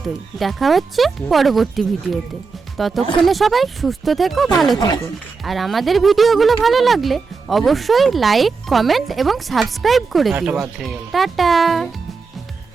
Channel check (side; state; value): left; quieter; 4.7 dB